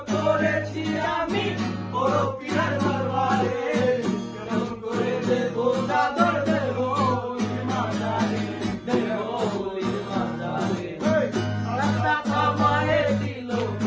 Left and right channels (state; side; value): identical; both; correlation 1.00